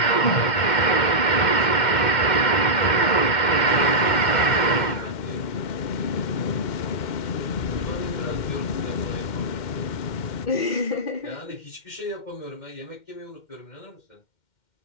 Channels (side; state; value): right; late; 2.1 ms